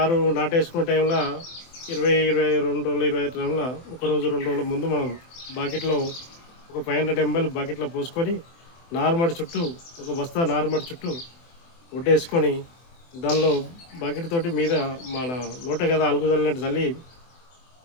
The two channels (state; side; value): late; right; 24 ms